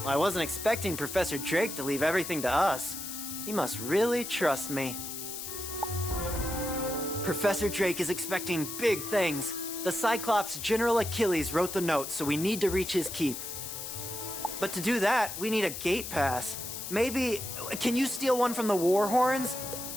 I wasn't expecting Professor Drake to leave everything to us. He must really trust me. Professor Drake is expecting big things. The Cyclops General Achilles wrote the note, so we need to reach his keep. But to do that, we need a gate pass. Maybe, can you steal one from the War Horns?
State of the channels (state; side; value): noise; left; hiss, 7 dB below the sound